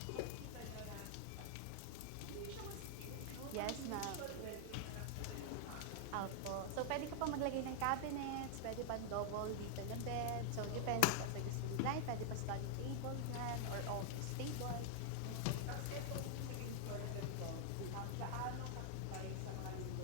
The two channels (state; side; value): different; both; correlation 0.00